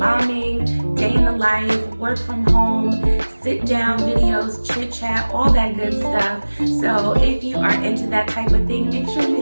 day in the life, work from home, sit down videos, chit chat, all that good stuff. So if you are into that type of thing, make sure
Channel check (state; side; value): inverted; both; correlation -1.00